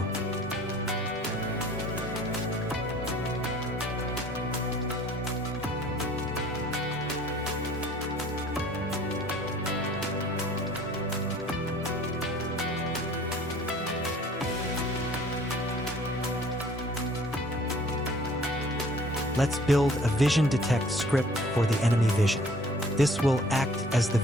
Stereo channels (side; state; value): both; normal; correlation 0.53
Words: Let's build a vision detect script for the enemy vision. This will act as the